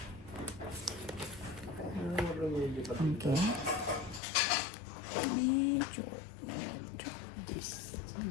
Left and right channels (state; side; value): drops out; right; at 4.2 s